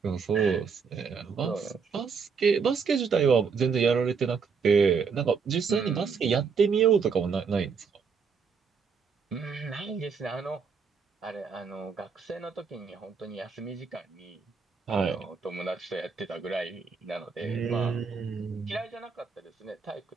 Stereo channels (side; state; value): left; quieter; 5.7 dB